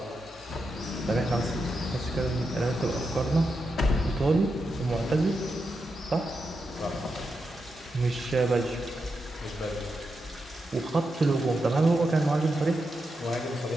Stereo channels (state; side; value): normal; both; correlation 0.87